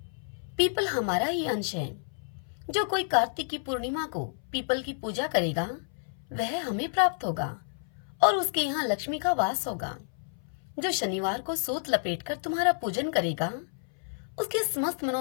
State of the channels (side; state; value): right; silent; 58 dB below the other